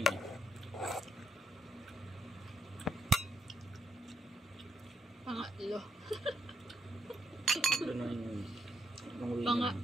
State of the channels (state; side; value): normal; both; correlation 0.77